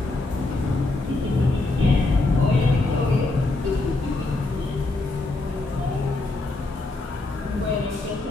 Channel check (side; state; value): right; quieter; 3.0 dB